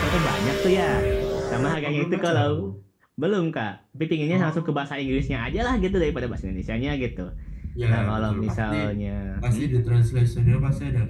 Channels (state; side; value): identical; both; correlation 1.00